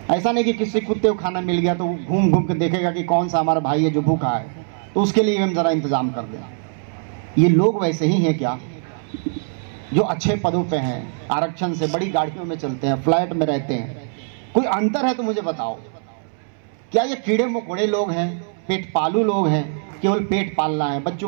ऐसा नहीं कि किसी कुत्ते को खाना मिल गया तो वो घूम घूम के देखेगा कि कौन सा हमारा भाई है जो भूखा है, तो उसके लिए हम जरा इंतजाम कर दें। ये लोग वैसे ही हैं क्या, जो अच्छे पदों पे हैं, आरक्षण से बड़ी गाड़ियों में चलते हैं, फ्लैट में रहते हैं? कोई अंतर है तो मुझे बताओ। क्या ये कीड़े मकोड़े लोग हैं, पेट पालू लोग हैं, केवल पेट पालना है,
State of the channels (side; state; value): left; silent; 65 dB below the other